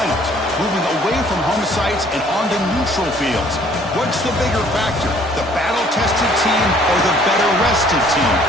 moving away from home sites and onto neutral fields. What's the bigger factor, the battle-tested team or the better-rested team?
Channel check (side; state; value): both; normal; correlation 0.58